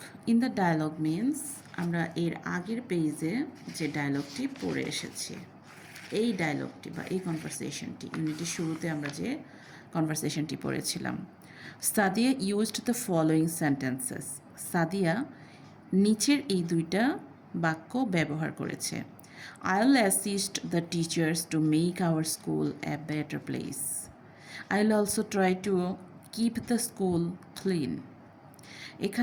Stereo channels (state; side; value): identical; both; correlation 1.00